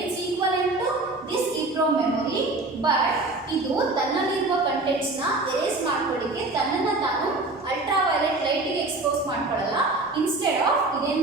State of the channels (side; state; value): left; quieter; 3.1 dB